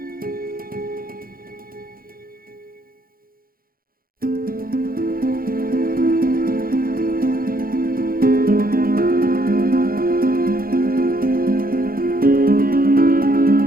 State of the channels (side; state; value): left; late; 0.42 ms